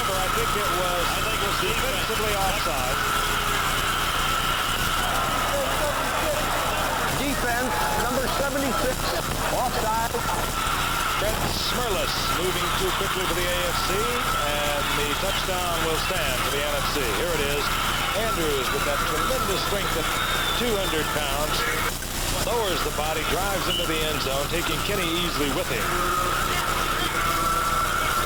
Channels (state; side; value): identical; both; correlation 1.00